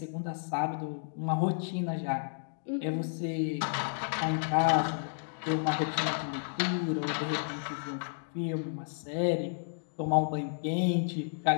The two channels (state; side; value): silent; right; digital silence